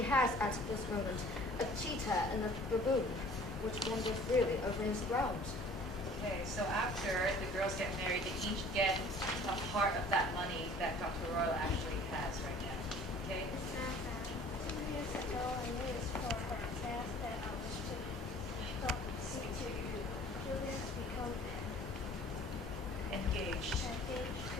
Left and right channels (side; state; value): both; normal; correlation 0.50